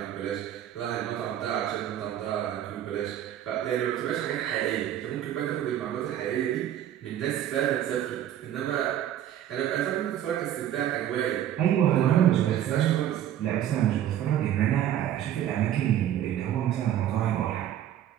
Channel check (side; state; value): left; quieter; 11.2 dB